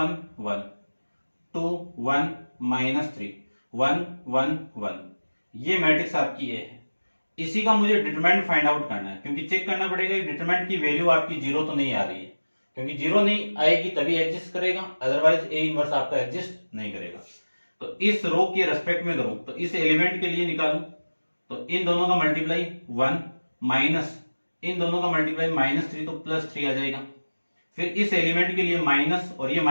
1, 2 1 -3 1 1 1, ये मैट्रिक्स आपकी ए है। इसी का मुझे डिटरमिनेंट फाइंड आउट करना है, क्योंकि चेक करना पड़ेगा डिटरमिनेंट की वैल्यू आपकी 0 तो नहीं आ रही है, क्योंकि 0 नहीं आएगी तभी एग्जिस्ट करेगा, अदरवाइज ए इनवर्स आपका एग्जिस्ट नहीं करेगा। तो इस रो के रेस्पेक्ट में करूं तो इस एलिमेंट के लिए निकालूं तो इन दोनों का मल्टीप्लाई 1 माइनस इन दोनों का मल्टीप्लाई -3 तो +3 आ जाएगा। फिर इस एलिमेंट के लिए माइनस और ये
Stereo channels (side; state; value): both; inverted; correlation -1.00